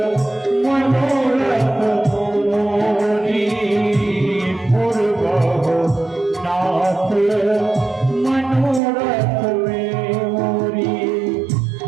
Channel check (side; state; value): left; drops out; at 8.8 s